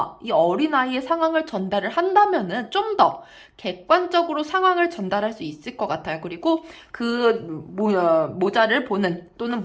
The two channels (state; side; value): identical; both; correlation 1.00